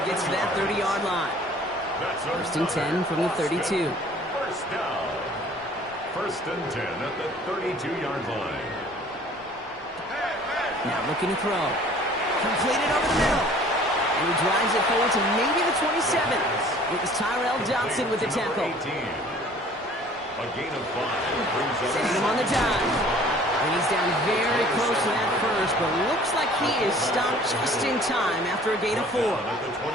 gets to that 30-yard line. First and 10 from the 32. First down. First and 10 at the 32-yard line. Now looking to throw. Completed over the middle. And he drives it forward to maybe the 27. It was Tyrell Johnson with the tackle. A gain of 5. Sending him on the dime. And he's down very close to that first, but looks like he is stopped just in time after a gain of 4.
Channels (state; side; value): normal; both; correlation 0.51